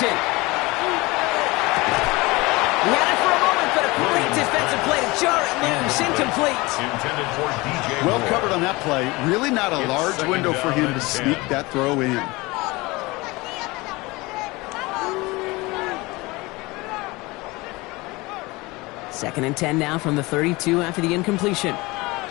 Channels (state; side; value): quieter; right; 22.9 dB